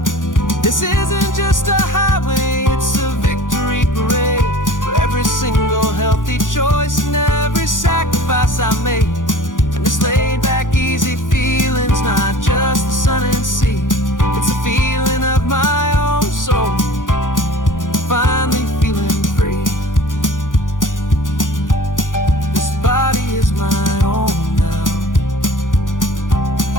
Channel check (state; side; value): late; right; 0.88 ms